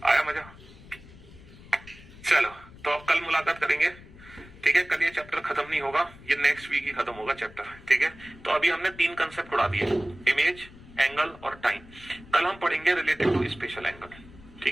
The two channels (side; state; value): left; noise; rumble, 20 dB below the sound